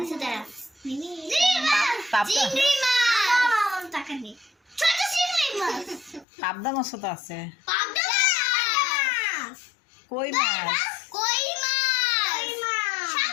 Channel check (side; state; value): right; drops out; at 6.2 s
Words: আচ্ছা দাঁড়া, চিংড়ি মাছ, টাকা নেই, ছোট চিংড়ি মাছ, পাবদা মাছও তো আছে, পাবদা মাছ, কই মাছ, কই মাছ,